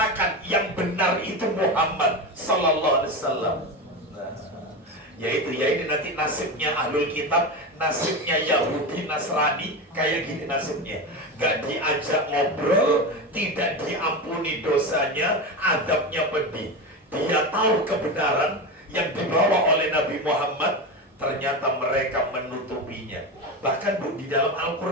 yang benar itu Muhammad Sallallahu Alaihi Wasallam. Yaitu ya ini nanti nasibnya ahlul kitab, nasibnya Yahudi Nasrani kayak gini nasibnya. Gak diajak ngobrol, tidak diampuni dosanya, adabnya pedih. Dia tahu kebenaran yang dibawa oleh Nabi Muhammad, ternyata mereka menutupinya. Bahkan Bu, di dalam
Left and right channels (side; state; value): both; normal; correlation 0.20